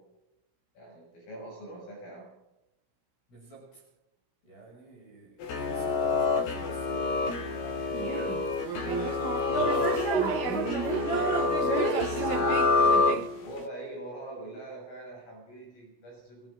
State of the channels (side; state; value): right; late; 16 ms